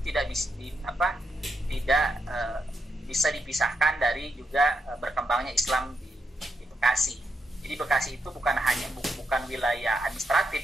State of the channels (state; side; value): normal; both; correlation 0.83